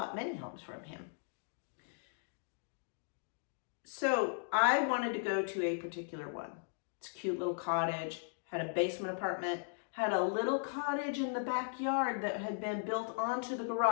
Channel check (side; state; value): right; silent; digital silence